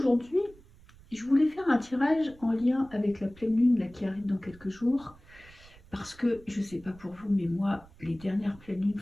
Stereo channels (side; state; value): right; noise; rumble, 23 dB below the sound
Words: je voulais faire un tirage en lien avec la pleine lune là, qui arrive dans quelques jours. Parce que, je sais pas pour vous, mais moi, les dernières pleines lunes,